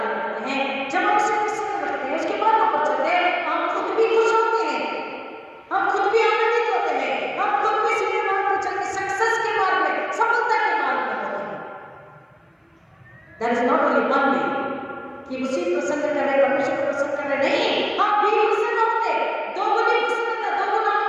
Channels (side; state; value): both; identical; correlation 1.00